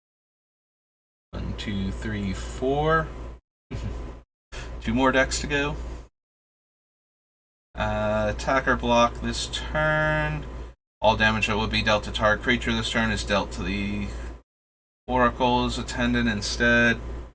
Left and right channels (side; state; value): both; identical; correlation 1.00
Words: One, two, three, four. 2 more decks to go. Attacker block this turn. All damage that would be dealt to target creature this turn is dealt to the Oracle's attendant instead.